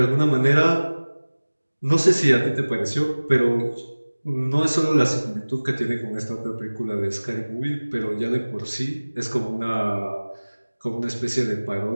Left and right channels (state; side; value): inverted; both; correlation -1.00